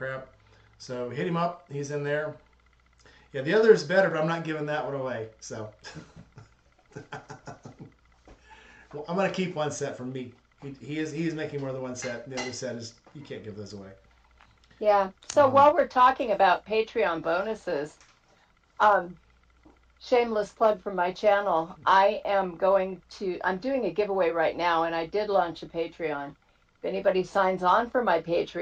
So hit him up. He's in there. Yeah, the other is better, but I'm not giving that one away. So well, I'm gonna keep one set from me. He is making more than one set. The other set is you can't give those away. Yeah. So while we're talking about Patreon bonuses, shameless plug from my channel, I'm doing a giveaway right now, and I did launch a Patreon. If anybody signs on for my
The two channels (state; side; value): identical; both; correlation 1.00